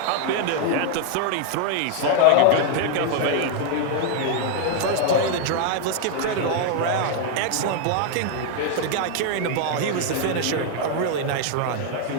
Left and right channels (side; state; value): both; different; correlation 0.00